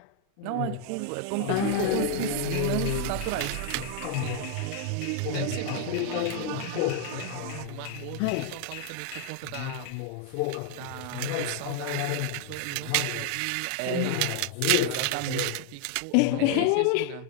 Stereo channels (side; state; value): both; different; correlation 0.00